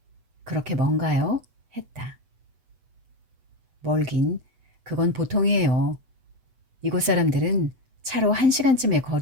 그렇게 먼가요? 했다. 멀긴 그건 보통이에요. 이곳 사람들은 차로 1시간쯤의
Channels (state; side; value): late; left; 8.1 ms